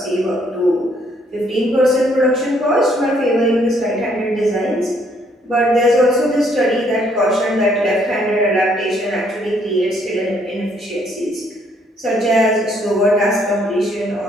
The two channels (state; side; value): normal; both; correlation 0.67